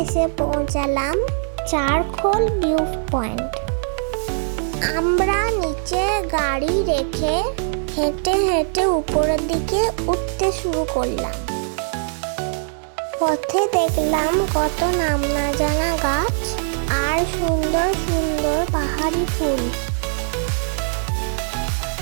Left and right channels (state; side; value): silent; left; 65 dB below the other